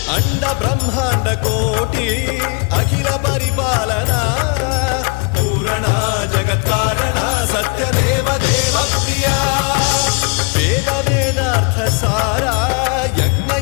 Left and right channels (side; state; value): right; quieter; 33.8 dB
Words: అండ బ్రహ్మాండ కోటి అఖిల పరిపాలన పూరణ జగత్కారణ సత్యదేవ దేవ ప్రియ వేద వేదార్థ సారా యజ్ఞ